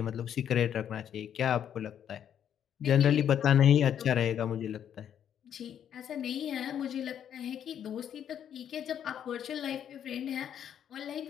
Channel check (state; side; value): quieter; right; 9.4 dB